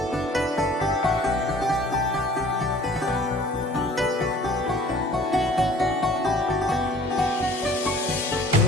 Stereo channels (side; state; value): both; normal; correlation 0.51